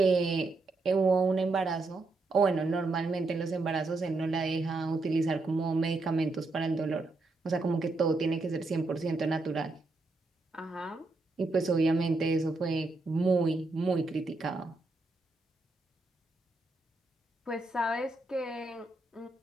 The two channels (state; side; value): quieter; left; 3.3 dB